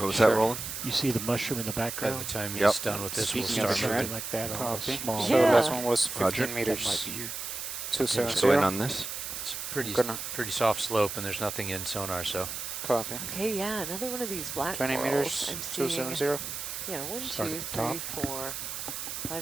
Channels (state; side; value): noise; right; hiss, 6 dB below the sound